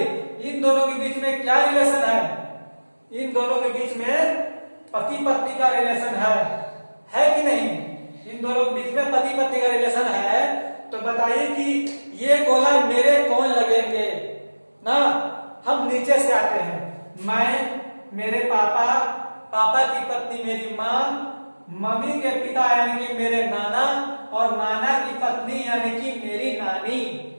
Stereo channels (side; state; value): both; inverted; correlation -1.00